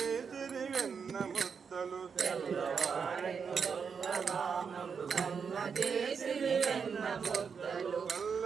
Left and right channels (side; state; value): left; quieter; 6.1 dB